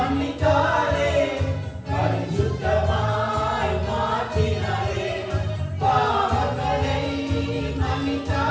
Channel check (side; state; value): both; identical; correlation 1.00